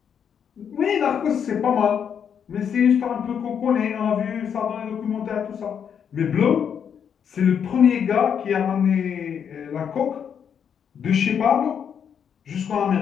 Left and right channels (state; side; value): quieter; right; 7.8 dB